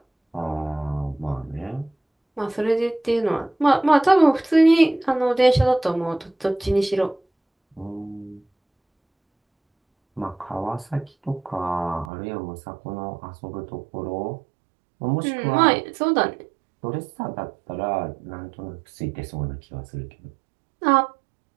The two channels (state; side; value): drops out; left; at 12.1 s